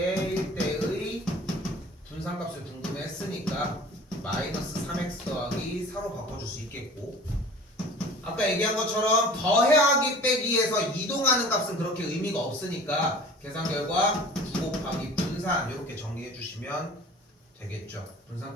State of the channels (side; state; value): both; normal; correlation 0.43